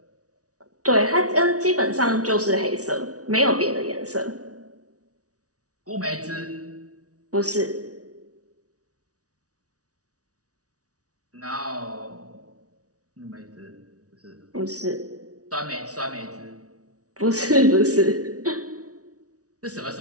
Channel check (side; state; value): left; late; 0.67 ms